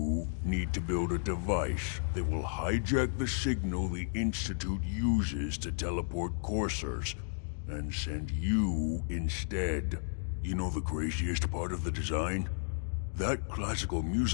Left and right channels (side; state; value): right; silent; digital silence